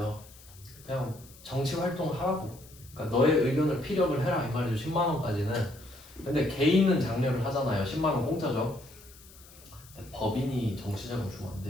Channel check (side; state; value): left; noise; hiss, 22 dB below the sound